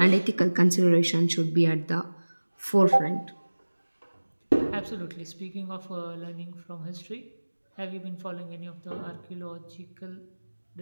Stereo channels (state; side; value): inverted; both; correlation -1.00